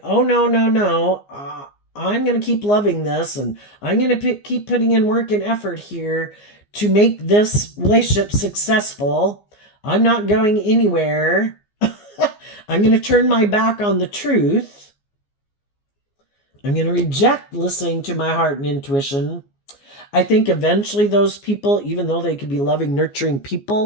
oh, no, I'm going to keep loving this, and I'm going to keep putting in work and effort here to make this relationship successful. I'm not going anywhere. I'm going to turn my back on the truth. I'm going to reject listening to my heart and intuition. I think eventually those people, even though they could be loving, nurturing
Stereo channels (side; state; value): right; late; 15 ms